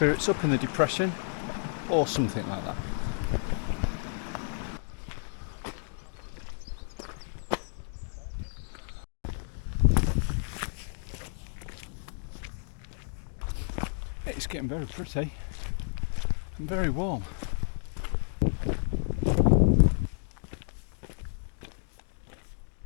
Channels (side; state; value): right; silent; 57 dB below the other